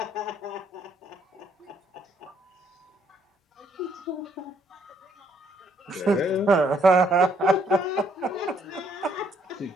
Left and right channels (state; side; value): normal; both; correlation 0.68